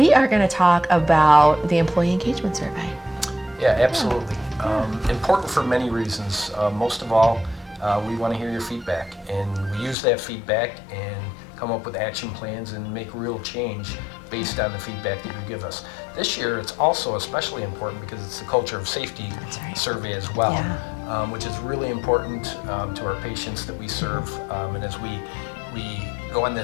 are going to talk about the employee engagement survey. Yeah, absolutely. Important for many reasons. Most of all, we want to hear your feedback, and we use that feedback and come up with action plans and make real change based on the feedback that you give us. This year, it's also especially important because it's the culture of safety survey as well, which is really important to our patients that we serve. And as we go on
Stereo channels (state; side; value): drops out; right; at 10.0 s